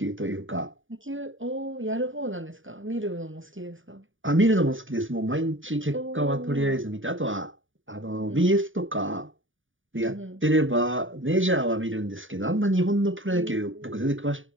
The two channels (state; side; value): late; left; 0.57 ms